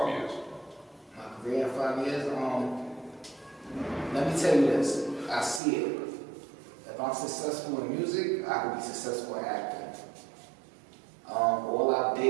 years? My career in 5 years. Let me tell you this. I see it. If I'm successful in music, I can be successful in acting. All our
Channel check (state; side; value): drops out; left; at 5.6 s